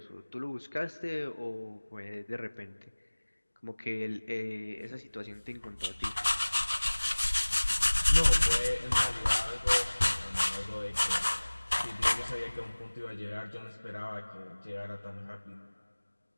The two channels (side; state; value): both; inverted; correlation -1.00